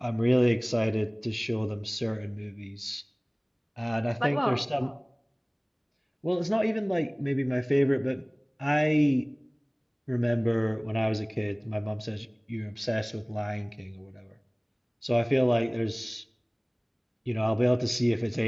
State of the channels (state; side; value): identical; both; correlation 1.00